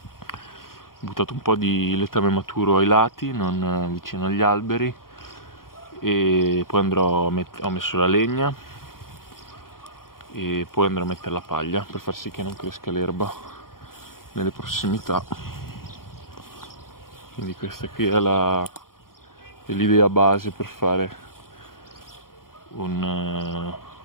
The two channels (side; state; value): right; late; 0.92 ms